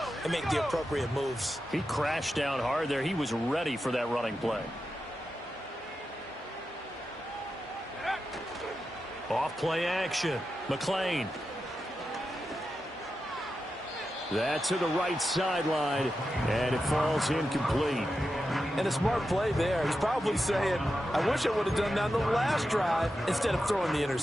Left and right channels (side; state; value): both; normal; correlation 0.90